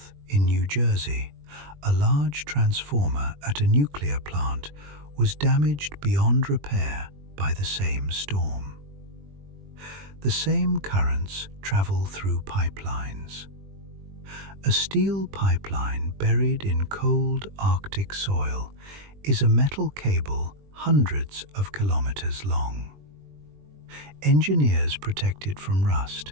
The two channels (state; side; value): late; left; 20 ms